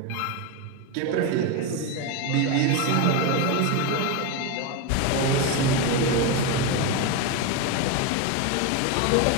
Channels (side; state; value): both; different; correlation 0.03